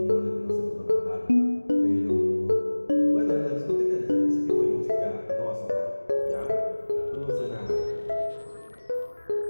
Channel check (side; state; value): both; inverted; correlation -1.00